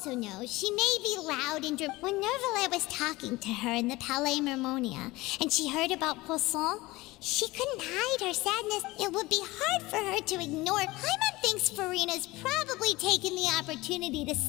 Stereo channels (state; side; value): quieter; right; 20.4 dB